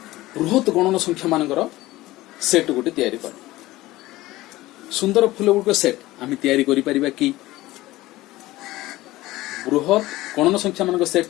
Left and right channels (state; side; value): quieter; right; 17.6 dB